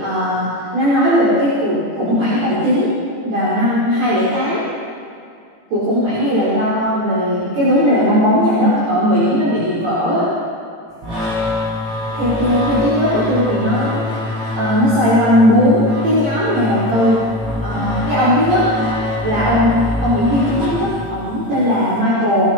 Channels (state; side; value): late; left; 18 ms